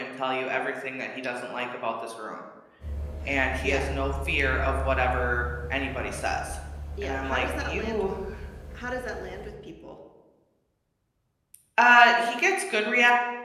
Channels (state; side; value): identical; both; correlation 1.00